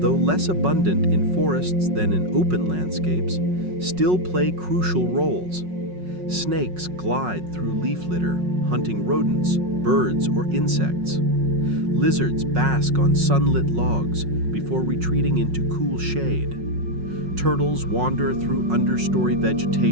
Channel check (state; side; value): late; left; 5.4 ms